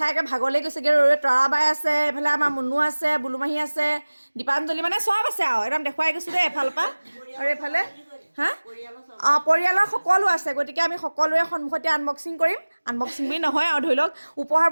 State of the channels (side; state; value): both; inverted; correlation -1.00